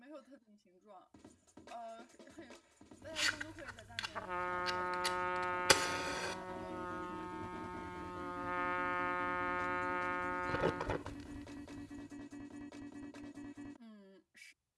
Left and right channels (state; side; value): identical; both; correlation 1.00